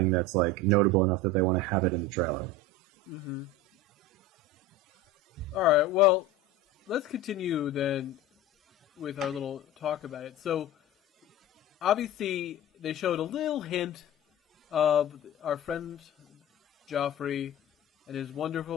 that's like notable enough that they want to have it in the trailer. Mm-hmm. All right, well, let's continue then with our little talk about it. So, obviously, they showed a little hint of our friend Joffrey and his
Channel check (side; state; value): both; normal; correlation 0.31